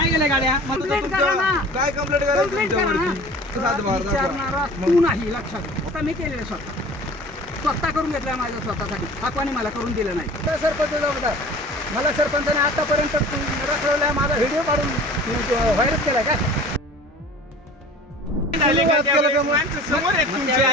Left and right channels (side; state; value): both; normal; correlation 0.43